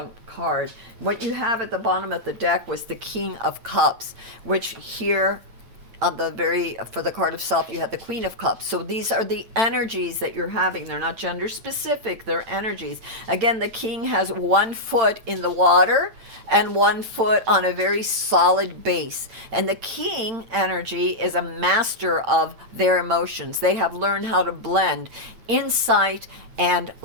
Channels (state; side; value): late; left; 8.9 ms